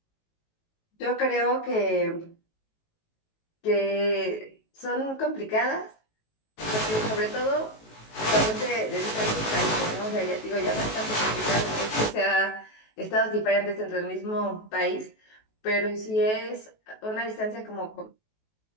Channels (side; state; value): right; late; 19 ms